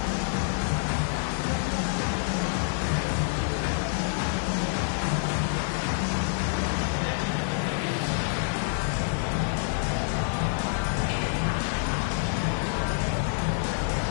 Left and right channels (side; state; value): right; silent; digital silence